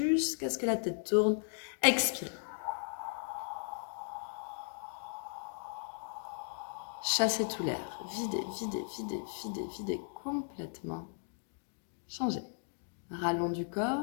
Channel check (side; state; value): right; silent; digital silence